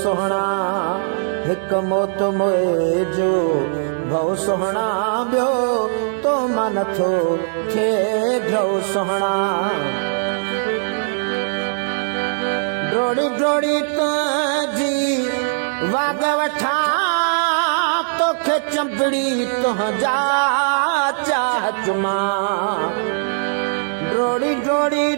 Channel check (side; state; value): left; silent; 64 dB below the other